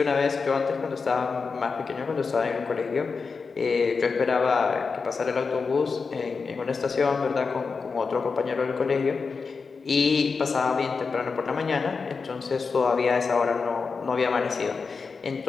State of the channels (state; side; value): quieter; right; 4.9 dB